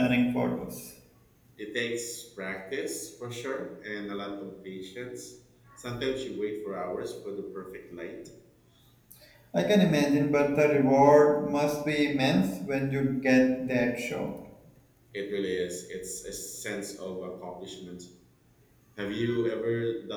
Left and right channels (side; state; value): both; identical; correlation 1.00